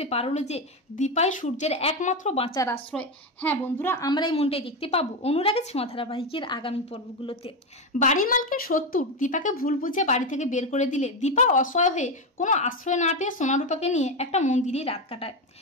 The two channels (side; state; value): both; normal; correlation 0.12